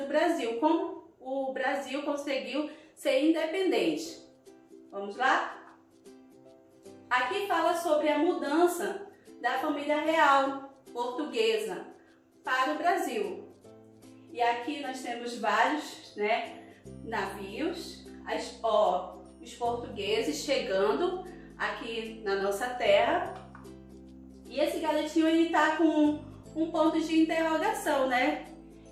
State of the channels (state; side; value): identical; both; correlation 1.00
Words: Brasil, como o Brasil conseguiu ser independente. Vamos lá? Aqui fala sobre a mudança da família real portuguesa para o Brasil. E aqui nós temos vários, né, navios, os portugueses chegando aqui na nossa terra. E esse garotinho, ele tá com um ponto de interrogação, né?